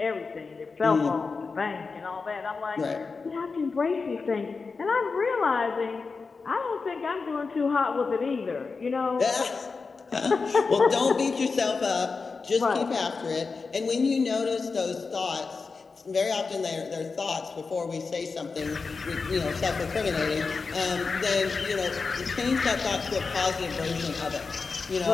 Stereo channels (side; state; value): right; quieter; 4.6 dB